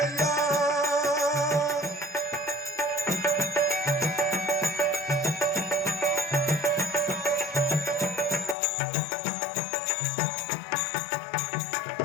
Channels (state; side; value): drops out; right; at 8.6 s